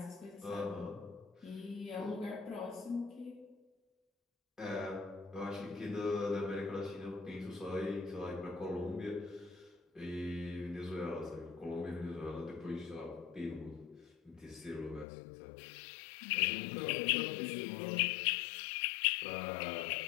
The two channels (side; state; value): right; drops out; at 15.1 s